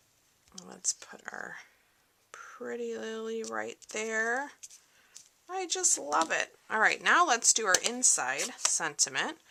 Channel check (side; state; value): both; identical; correlation 1.00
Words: Let's put our pretty lily right there. I just love it. Alright, now let's do our inside sentiment